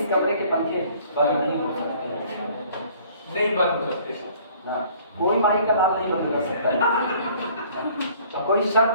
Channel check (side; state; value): both; inverted; correlation -0.55